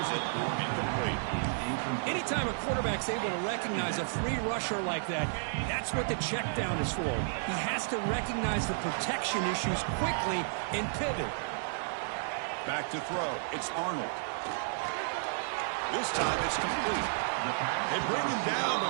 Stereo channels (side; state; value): left; silent; digital silence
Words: it. Incomplete. Anytime a quarterback's able to recognize a free rusher like that, that's what the check down is for. He has to recognize the protection issues quickly and pivot. Back to throw. It's Arnold. This time it's complete. They bring him down,